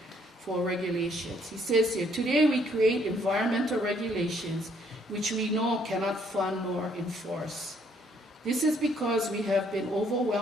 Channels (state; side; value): normal; both; correlation 0.67